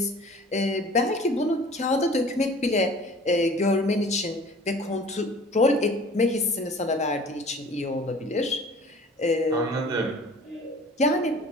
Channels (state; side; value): normal; both; correlation 0.46